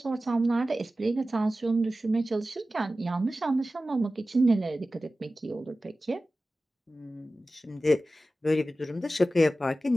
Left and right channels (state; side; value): normal; both; correlation 0.95